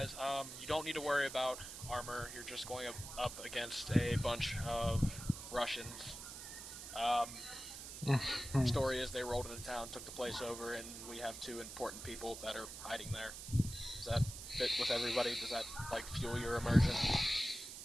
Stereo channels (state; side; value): noise; right; hiss, 10 dB below the sound